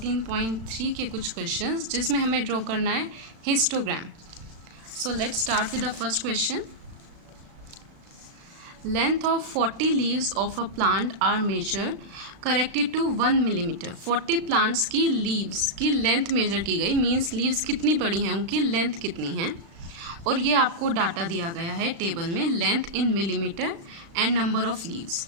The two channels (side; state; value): left; late; 36 ms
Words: के कुछ क्वेश्चंस जिसमें हमें ड्रॉ करना है histogram. So let's start with the first question. Length of 40 leaves of a plant are measure corrected to 1 millimetre. 40 plants की लीव्स की लेंथ मेजर की गई, मीन्स लीव्स कितनी बड़ी हैं, उनकी लेंथ कितनी है, और ये आपको डाटा दिया गया है टेबल में, length in millimetre and number of leaves.